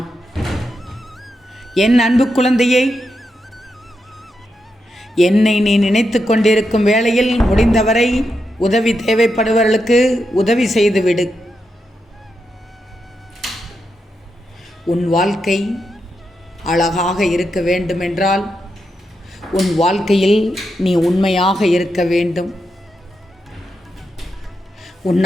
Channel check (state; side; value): normal; both; correlation 0.85